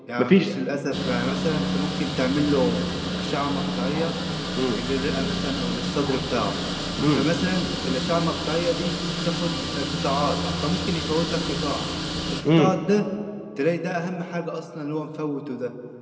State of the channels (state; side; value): identical; both; correlation 1.00